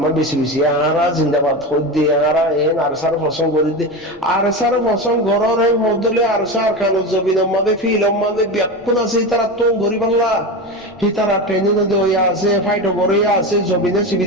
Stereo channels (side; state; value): left; noise; rumble, 28 dB below the sound